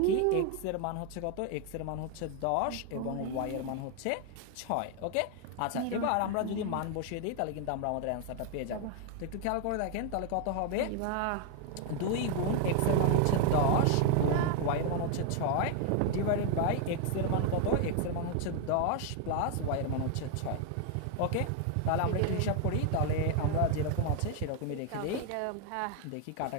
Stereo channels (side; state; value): both; different; correlation 0.00